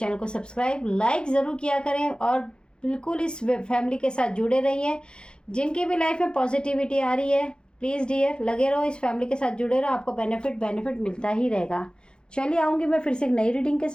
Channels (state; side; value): late; right; 0.050 ms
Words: को सब्सक्राइब लाइक ज़रूर किया करें और बिल्कुल इस फैमिली के साथ जुड़े रहिए। जिनकी भी लाइफ में पॉजिटिविटी आ रही है, प्लीज़ डियर लगे रहो, इस फैमिली के साथ जुड़े रहो, आपको बेनिफिट मिलता ही रहेगा। चलिए आऊँगी मैं फिर से एक नई रीडिंग के